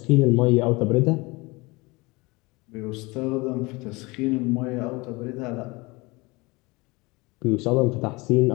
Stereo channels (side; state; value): right; quieter; 24.5 dB